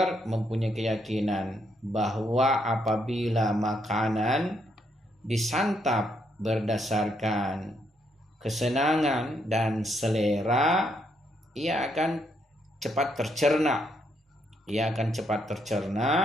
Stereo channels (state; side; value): normal; both; correlation 0.75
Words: mempunyai keyakinan bahwa apabila makanan disantap berdasarkan kesenangan dan selera, ia akan cepat tercerna.